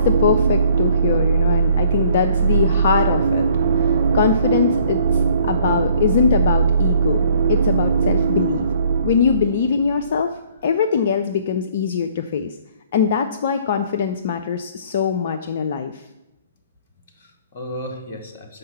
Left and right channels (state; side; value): inverted; both; correlation -0.59